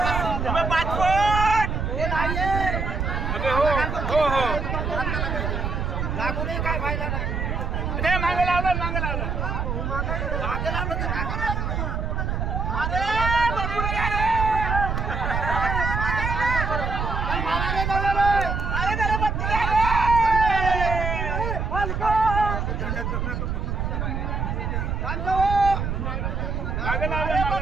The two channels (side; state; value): right; noise; rumble, 1 dB below the sound